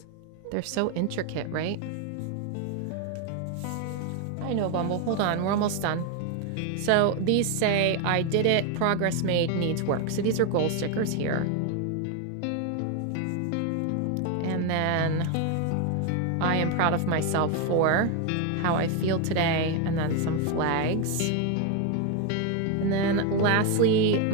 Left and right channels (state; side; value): different; both; correlation 0.01